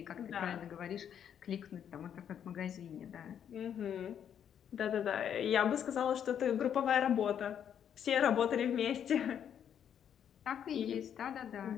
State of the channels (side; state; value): right; quieter; 8.9 dB